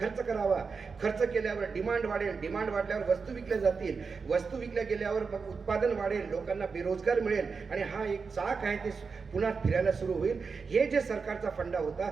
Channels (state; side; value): quieter; left; 5.1 dB